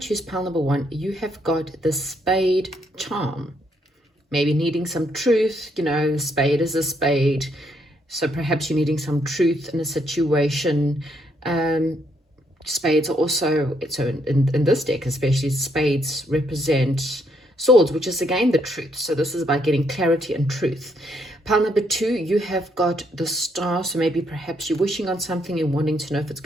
pile number one, you have got the spade charm. Maybe needing some truth, the spade is a spade. So perhaps you're needing some truth in a situation. Spades are also, so in this deck especially, spades represent swords, which is again the truth. So this is about getting clarity and truth. Pile number two, you have got the star. So maybe perhaps you're wishing on something and wanting to know if it's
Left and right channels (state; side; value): normal; both; correlation 0.73